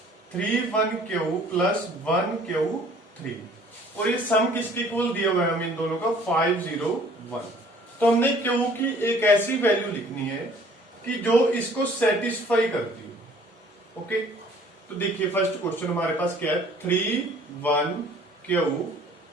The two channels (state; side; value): normal; both; correlation 0.54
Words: 3 1 प्लस 1 3 और ये सम किसके इक्वल दिया हुआ है हमें इन दोनों का 5 0 1। तो हमने क्यू की एक ऐसी वैल्यू लिखनी है कि जो इसको सेटिस्फाई करती हो। ओके, तो देखिए फर्स्ट क्वेश्चन हमारे पास क्या है 3 1